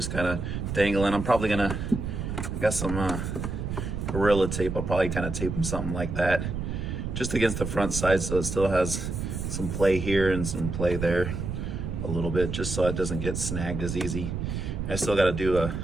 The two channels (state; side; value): noise; right; rumble, 4 dB below the sound